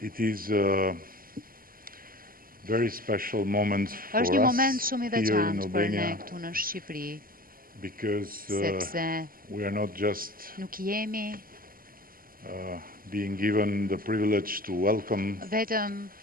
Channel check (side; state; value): left; late; 0.42 ms